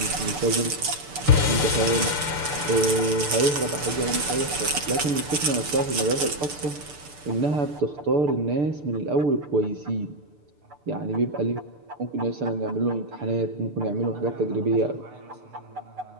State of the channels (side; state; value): left; late; 6.8 ms